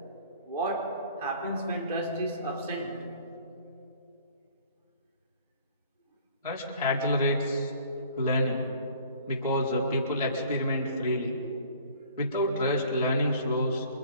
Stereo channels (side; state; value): both; inverted; correlation -0.52